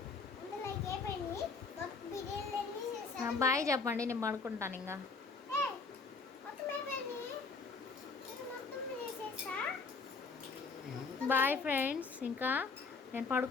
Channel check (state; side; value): quieter; right; 4.6 dB